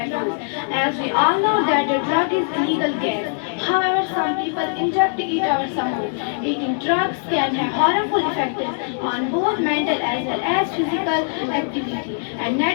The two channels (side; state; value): right; silent; digital silence